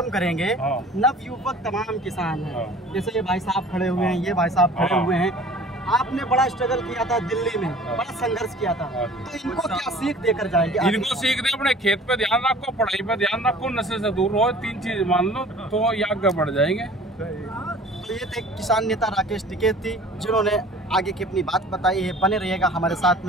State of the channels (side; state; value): both; normal; correlation 0.47